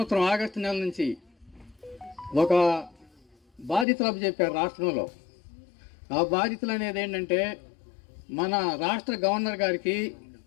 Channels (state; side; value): drops out; right; at 3.9 s